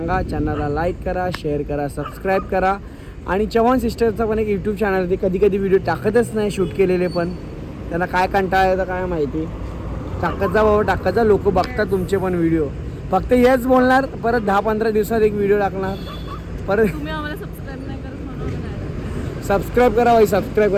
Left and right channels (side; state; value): both; identical; correlation 1.00